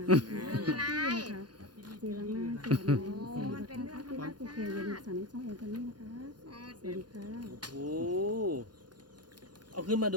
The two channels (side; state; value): left; late; 0.70 ms